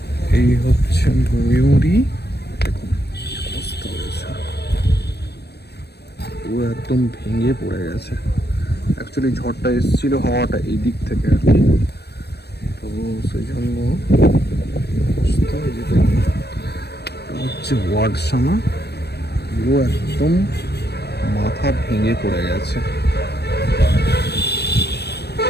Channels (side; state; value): right; late; 0.47 ms